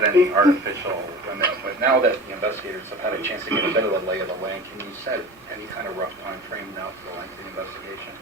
any artificial limit, but now that the investigators have had a chance to get a bit of the lay of the land, can you set any kind of rough time frame now for the length of the investigation?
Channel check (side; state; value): both; normal; correlation 0.36